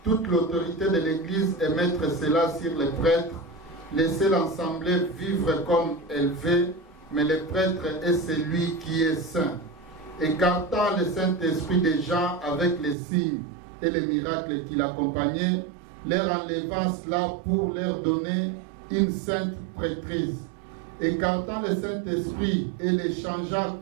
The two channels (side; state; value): left; drops out; at 13.0 s